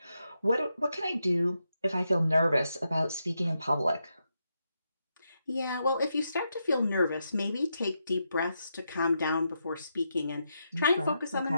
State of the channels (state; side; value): inverted; both; correlation -0.84